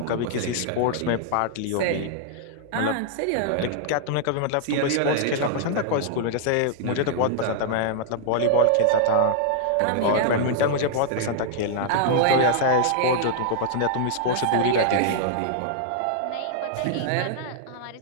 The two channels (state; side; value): different; both; correlation -0.01